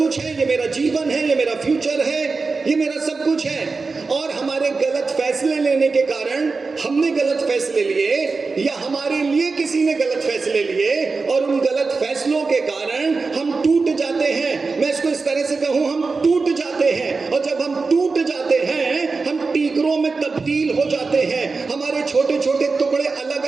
है, ये मेरा जीवन है, ये मेरा फ्यूचर है, ये मेरा सब कुछ है। और हमारे गलत फैसले लेने के कारण, हमने गलत फैसले लिए या हमारे लिए किसी ने गलत फैसले लिए, और उन गलत फैसलों के कारण हम टूट जाते हैं। मैं इसको इस तरह से कहूं, हम टूट जाते हैं। और जब हम टूट जाते हैं हम टीकरों में तब्दील हो जाते हैं, हमारे छोटे छोटे टुकड़े अलग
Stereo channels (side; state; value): left; quieter; 4.2 dB